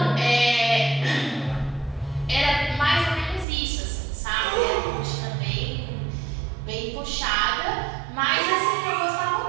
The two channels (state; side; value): drops out; left; at 3.5 s